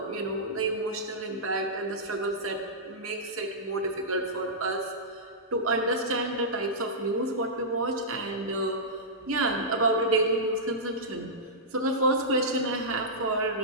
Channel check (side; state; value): both; normal; correlation -0.13